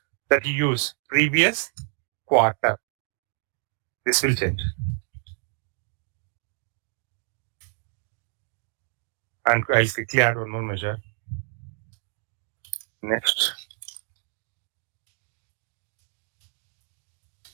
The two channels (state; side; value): silent; left; digital silence